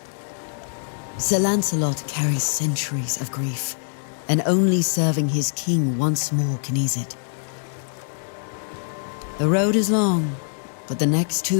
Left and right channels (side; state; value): right; silent; 63 dB below the other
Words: Sir Lancelot carries centuries of grief, and only serving his king once more can ease it. The road is long, but the next